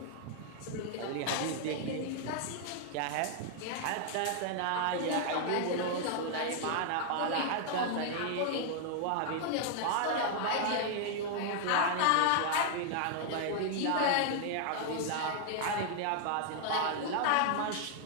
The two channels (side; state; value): both; different; correlation 0.00